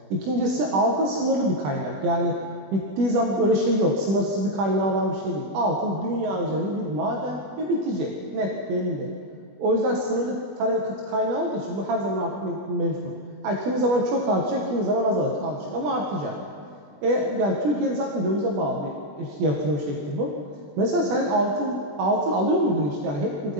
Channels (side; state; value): left; late; 20 ms